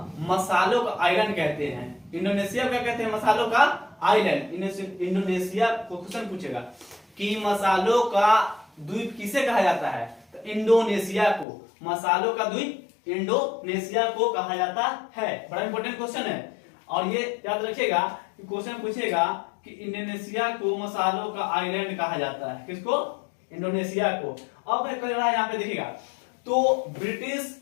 मसालों का आइलैंड कहते हैं। इंडोनेशिया को क्या कहते हैं, मसालों का आइलैंड। इंडोनेशिया को क्वेश्चन पूछेगा कि मसालों का द्वीप किसे कहा जाता है, तो इंडोनेशिया को, मसालों का द्वीप इंडोनेशिया को कहा जाता है। बड़ा इंपॉर्टेंट क्वेश्चन है, और ये याद रखिएगा कि क्वेश्चन पूछेगा कि इंडोनेशिया को मसालों का आइलैंड कहा जाता है, किसको, इंडोनेशिया को। अब मैं कह रहा है यहाँ पे देखिएगा, तो ब्रिटिश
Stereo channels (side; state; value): right; drops out; at 11.5 s